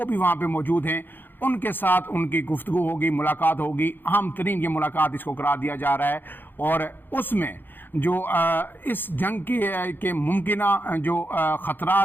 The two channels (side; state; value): right; late; 0.096 ms